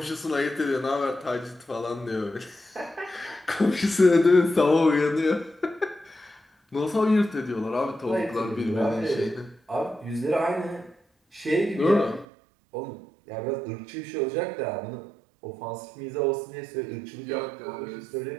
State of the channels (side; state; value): left; drops out; at 12.2 s